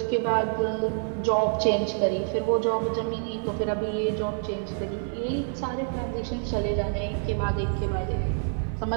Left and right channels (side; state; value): left; silent; 60 dB below the other